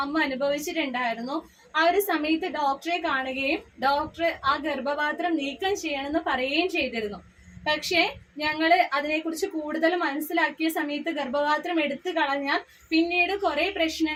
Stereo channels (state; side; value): identical; both; correlation 1.00